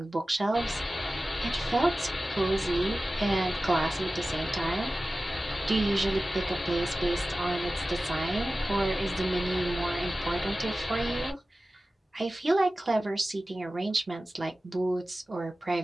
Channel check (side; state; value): both; normal; correlation 0.96